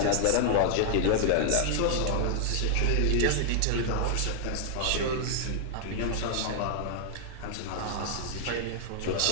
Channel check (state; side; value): different; both; correlation -0.01